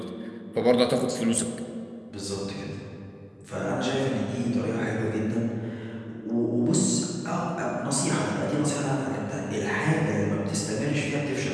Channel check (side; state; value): both; identical; correlation 1.00